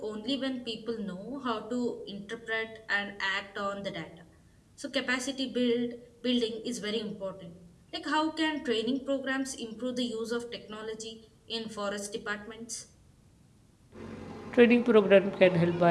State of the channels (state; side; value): identical; both; correlation 1.00